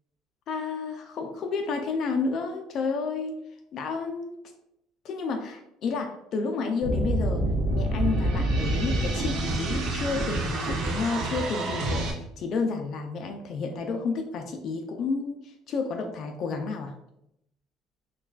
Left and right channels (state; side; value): normal; both; correlation 0.64